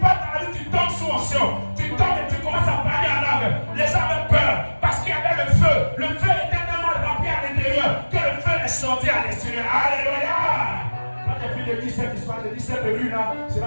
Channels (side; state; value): both; inverted; correlation -1.00